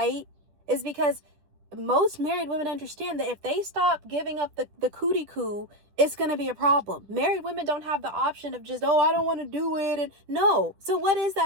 is because most married women understand that if they stop giving up the cootie coo, it's going to be a problem. Married women don't have the option of just, oh, I don't want to do it. And no. So what is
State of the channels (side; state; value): left; late; 10 ms